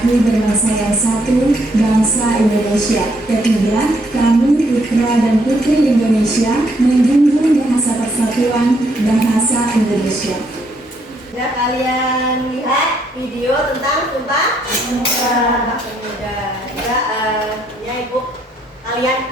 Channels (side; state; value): both; normal; correlation 0.72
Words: berbangsa yang satu, bangsa Indonesia. Ketiga, kami putra dan putri Indonesia menjunjung bahasa persatuan bahasa Indonesia. Sudah kalian lihat video tentang Sumpah Pemuda? Ya Ibu, kalian